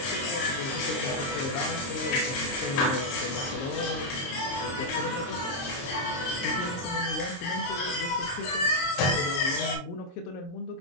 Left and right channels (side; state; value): right; late; 22 ms